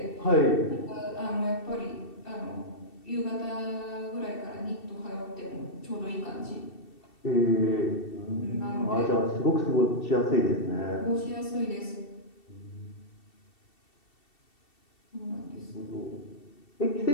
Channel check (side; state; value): right; late; 2.7 ms